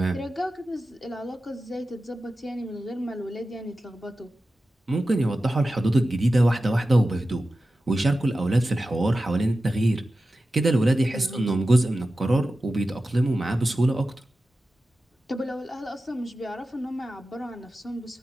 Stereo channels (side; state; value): both; normal; correlation 0.93